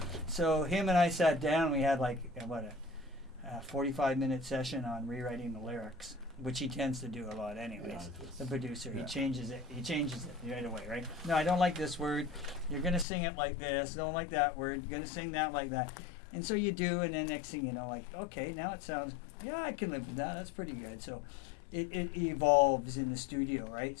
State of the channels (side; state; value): right; drops out; at 13.1 s